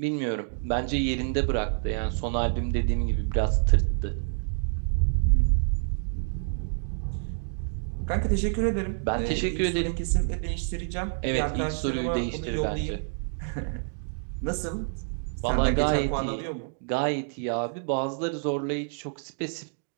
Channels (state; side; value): silent; left; digital silence